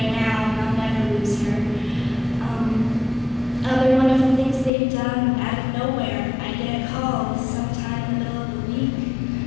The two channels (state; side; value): drops out; right; at 4.7 s